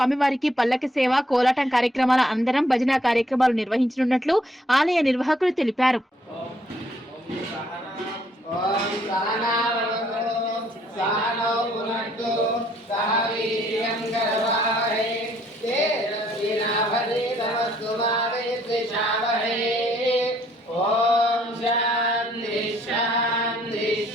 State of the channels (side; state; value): both; normal; correlation 0.66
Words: పల్లకి సేవ, కోలాటం కార్యక్రమాల అందరం భజన కార్యక్రమాలు నిర్వహించనున్నట్లు ఆలయ నిర్వాహకులు తెలిపారు.